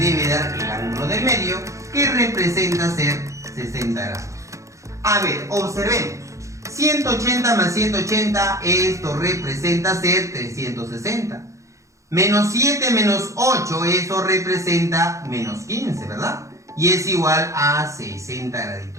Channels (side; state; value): left; late; 0.15 ms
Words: dar el ángulo del medio que representa ser 60 grados. A ver, observemos. 180 más 180, esto representa ser 360. Menos 7 menos 8, eso representa menos 15, ¿verdad? Y es igual a 60